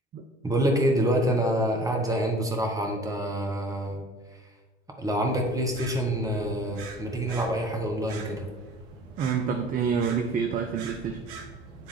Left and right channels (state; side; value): normal; both; correlation 0.46